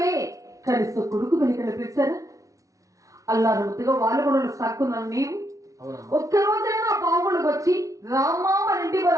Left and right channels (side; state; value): left; late; 0.16 ms